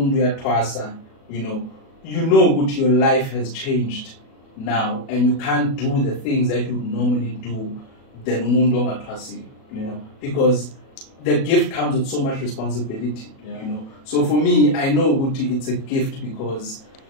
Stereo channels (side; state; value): right; late; 37 ms